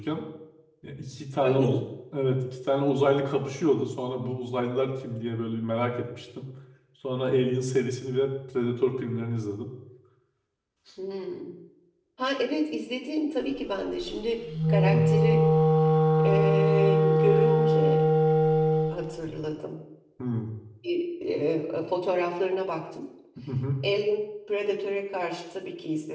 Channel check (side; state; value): both; identical; correlation 1.00